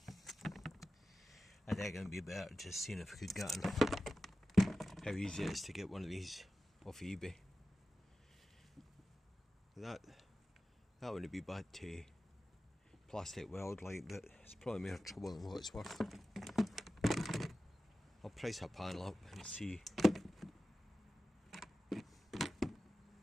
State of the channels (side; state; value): both; normal; correlation 0.94